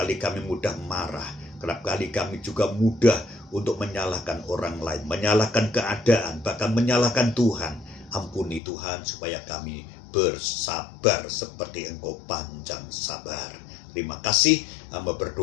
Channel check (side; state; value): right; drops out; at 8.6 s